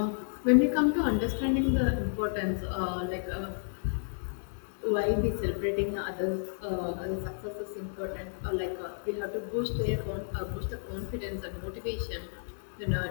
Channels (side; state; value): right; silent; digital silence